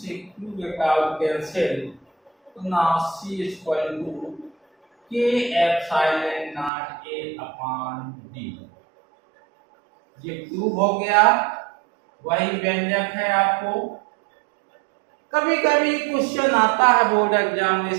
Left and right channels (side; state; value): left; drops out; at 6.7 s